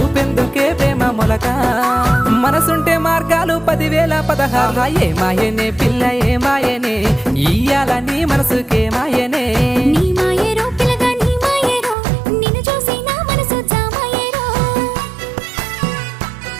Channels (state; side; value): drops out; left; at 12.0 s